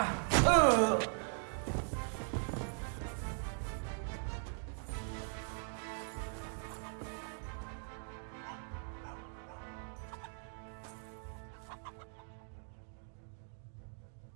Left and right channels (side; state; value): left; silent; 51 dB below the other